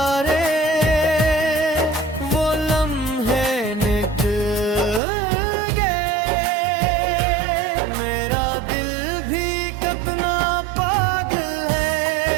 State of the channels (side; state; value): left; drops out; at 5.0 s